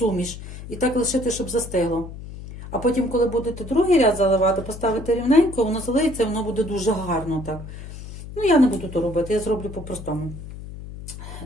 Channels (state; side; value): noise; left; hum, 12 dB below the sound